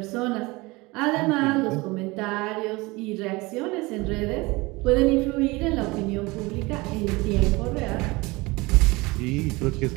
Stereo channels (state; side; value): quieter; left; 23.3 dB